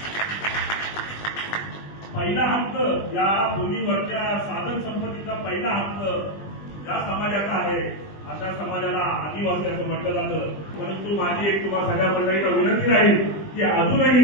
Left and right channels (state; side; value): late; right; 20 ms